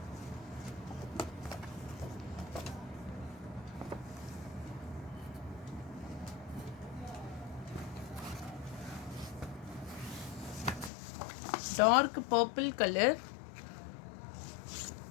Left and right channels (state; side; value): drops out; right; at 10.9 s